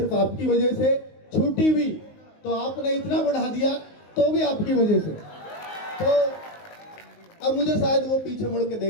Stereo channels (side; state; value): right; late; 19 ms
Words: आपकी वजह से, छूटी भी तो आपने इतना बढ़ा दिया तो भी आपकी वजह से। तो अब मुझे शायद वो पीछे मुड़ के